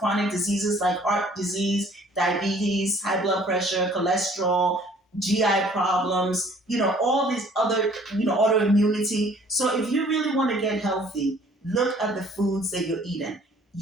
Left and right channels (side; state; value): both; normal; correlation 0.56